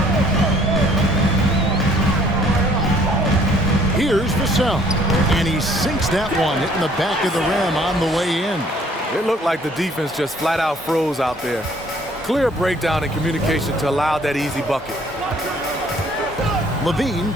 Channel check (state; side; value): normal; both; correlation 0.60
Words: Here's Vassell. And he sinks that one, hitting the back of the rim on the way in. It looked like the defense just flat out froze out there. Clear breakdown in communication to allow that easy bucket. Levine